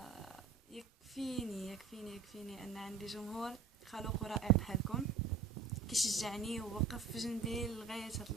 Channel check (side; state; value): left; quieter; 5.1 dB